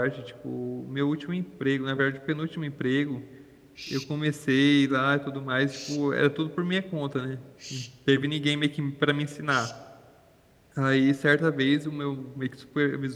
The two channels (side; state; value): both; identical; correlation 1.00